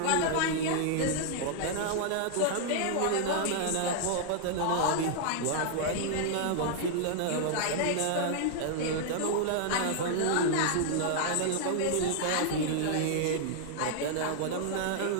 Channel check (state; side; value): different; both; correlation -0.01